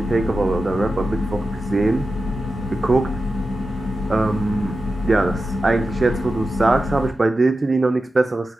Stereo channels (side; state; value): both; normal; correlation 0.92